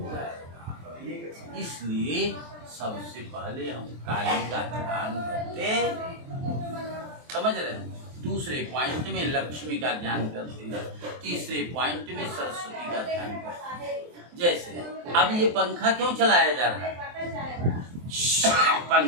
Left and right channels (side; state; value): left; late; 23 ms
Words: जाएगा। इसलिए सबसे पहले हम काली का ध्यान करते, समझ रहे हैं। दूसरे पॉइंट में लक्ष्मी का ध्यान करते हैं, तीसरे पॉइंट में सरस्वती का ध्यान करते हैं। जैसे अब ये पंखा क्यों चलाया जा रहा है?